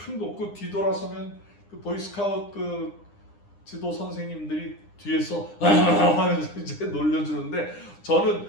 놓고 뒤돌아서면 그 보이스카웃 그 지도 선생님들이 뒤에서 하면서 이제 놀려주는데 저는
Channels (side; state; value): right; late; 9.8 ms